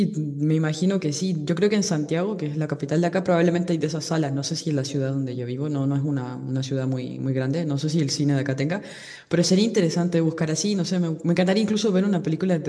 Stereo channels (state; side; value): identical; both; correlation 1.00